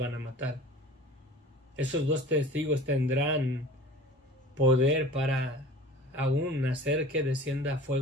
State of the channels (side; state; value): both; normal; correlation 0.42